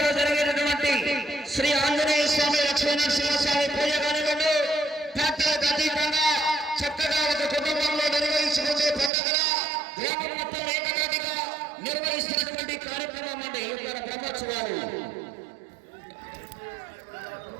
జరిగినటువంటి శ్రీ ఆంజనేయ స్వామి లక్ష్మీ నరసింహస్వామి పూజ కానివ్వండి, పార్టీలకు అతీతంగా చక్కగా ఒక కుటుంబంలో నిర్వహించుకునే పండుగగా గ్రామం మొత్తం ఏకదాటిగా నిర్వహిస్తున్నటువంటి కార్యక్రమం అండి ఈ యొక్క బ్రహ్మోత్సవాలు.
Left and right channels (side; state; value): left; drops out; at 9.1 s